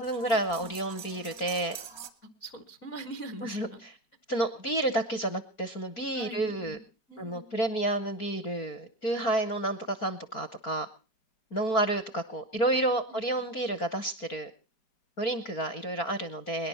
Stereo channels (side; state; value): right; late; 4.6 ms